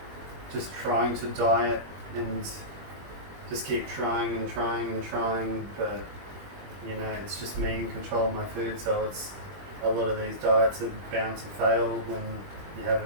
just trying to diet and just keep trying and trying and trying, but it's just me in control of my food, so it's a lot of these diets are bound to fail when you have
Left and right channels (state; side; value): late; left; 21 ms